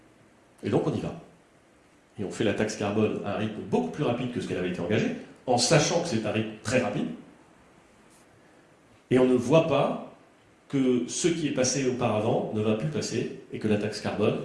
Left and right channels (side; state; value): both; identical; correlation 1.00